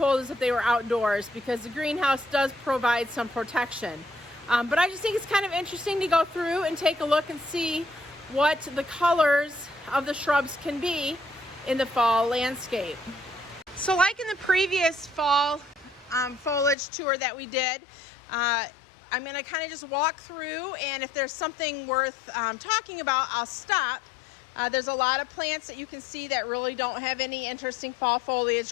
as if they were outdoors because the greenhouse does provide some protection. But I just think it's kind of interesting to go through and take a look and see what the colors of the shrubs can be in the fall landscape. So like in the previous fall foliage tour that we did, I'm going to kind of just walk through, and if there's something worth talking about, I'll stop. There's a lot of plants that you can see that really don't have any interesting fall foliage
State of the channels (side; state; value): right; drops out; at 16.8 s